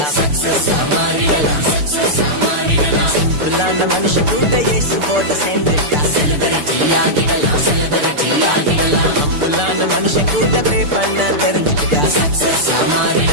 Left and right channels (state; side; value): late; left; 6.8 ms